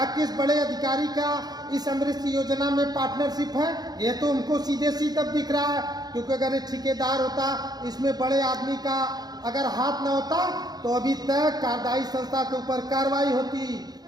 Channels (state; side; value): late; left; 0.19 ms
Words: किस बड़े अधिकारी का इस अमृत योजना में पार्टनरशिप है, ये तो हमको सीधे सीधे दिख रहा है। क्योंकि अगर एक ठेकेदार होता, इसमें बड़े आदमी का अगर हाथ न होता तो अभी तक कार्यदायी संस्था के ऊपर कार्रवाई होती।